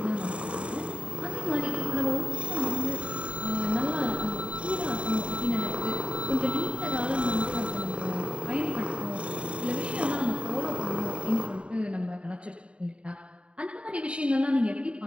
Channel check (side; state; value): left; late; 0.059 ms